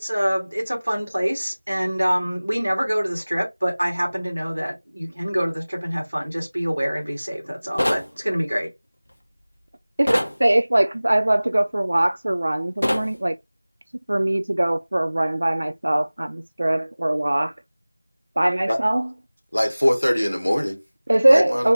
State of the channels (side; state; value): both; inverted; correlation -0.99